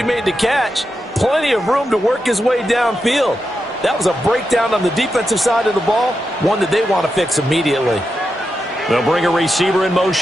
made the catch, plenty of room to work his way downfield. That was a breakdown on the defensive side of the ball, one that they want to fix immediately. They'll bring a receiver in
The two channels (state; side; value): normal; both; correlation 0.87